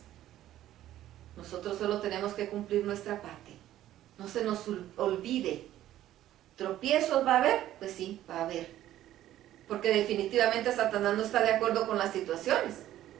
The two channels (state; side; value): quieter; left; 13.1 dB